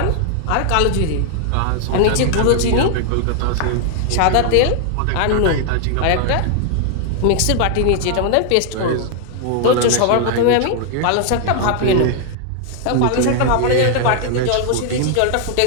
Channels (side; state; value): both; different; correlation 0.00